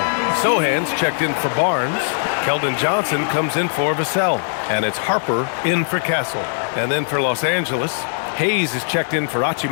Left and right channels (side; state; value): right; silent; digital silence